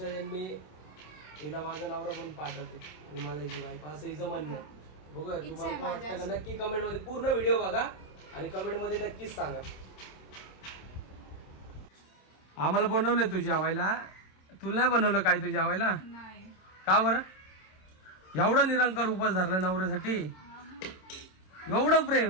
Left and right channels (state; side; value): late; right; 27 ms